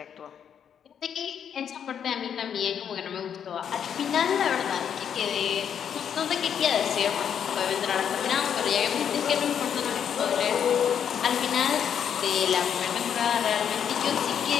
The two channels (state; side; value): quieter; right; 8.3 dB